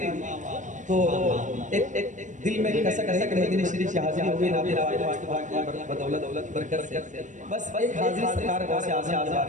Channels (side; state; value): left; late; 0.36 ms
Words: तो एक दिल में कसक रही कि मदीने शरीफ की हाजिरी हो गई नाबी बदौलत बरकत से, बस एक हाजिरी सरकार गौस आज़म हो